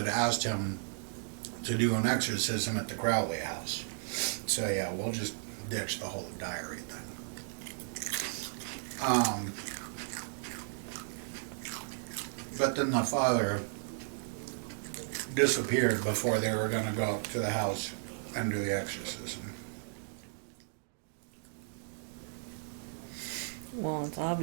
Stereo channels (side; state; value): left; silent; digital silence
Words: asked him to do an exorcism at the Crowley house. So yeah, we'll just ditch the whole diary thing. But then the father disappeared before they were going to go up to the house and do the exorcism. Well, it's